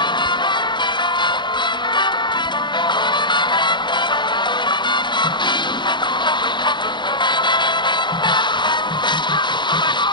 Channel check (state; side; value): late; right; 0.22 ms